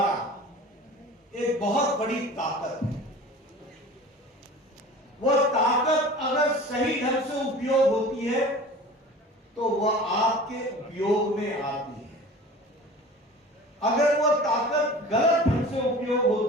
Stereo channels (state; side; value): normal; both; correlation 0.40